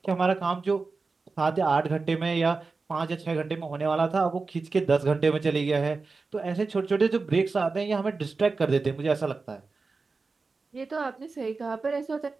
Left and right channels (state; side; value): quieter; left; 4.1 dB